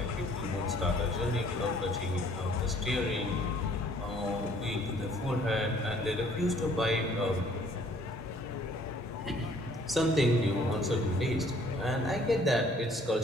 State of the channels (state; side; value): normal; both; correlation 0.59